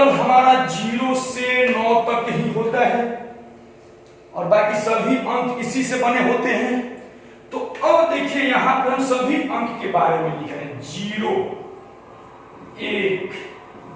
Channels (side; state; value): both; identical; correlation 1.00